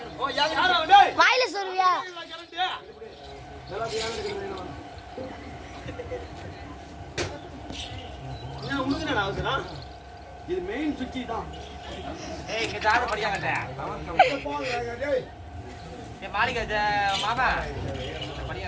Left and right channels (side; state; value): both; identical; correlation 1.00